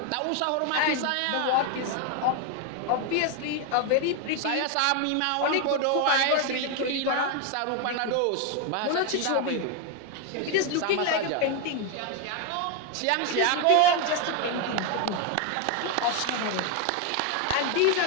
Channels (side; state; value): both; different; correlation 0.01